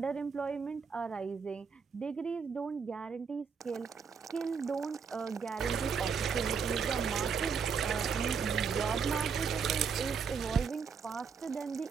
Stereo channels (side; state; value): left; quieter; 6.0 dB